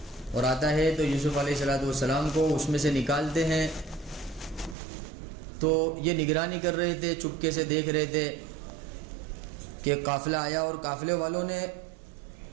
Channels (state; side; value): drops out; left; at 4.8 s